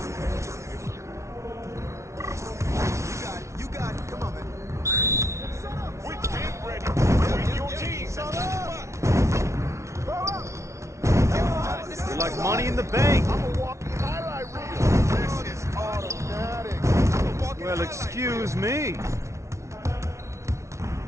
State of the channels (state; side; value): late; left; 0.14 ms